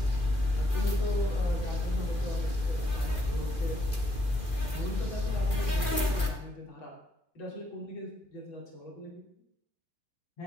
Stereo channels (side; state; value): right; late; 2.4 ms